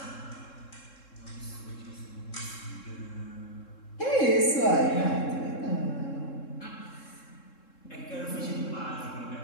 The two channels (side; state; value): right; late; 3.7 ms